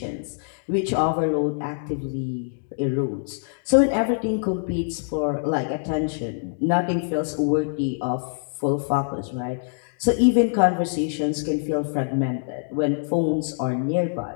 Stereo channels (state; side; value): silent; right; digital silence